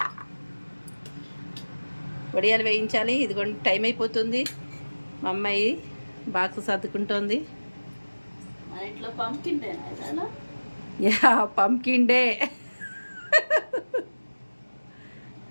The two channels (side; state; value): both; inverted; correlation -1.00